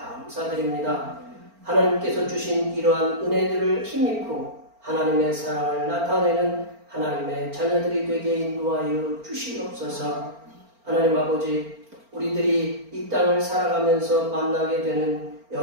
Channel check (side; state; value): left; late; 4.4 ms